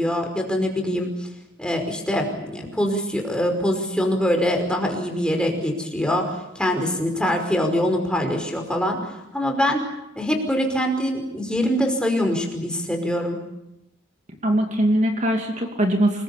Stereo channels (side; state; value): both; normal; correlation 0.72